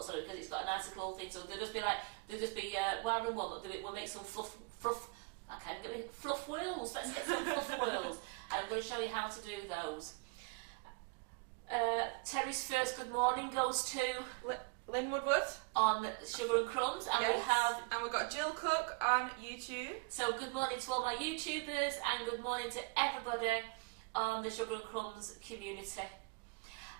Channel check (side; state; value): left; quieter; 29.6 dB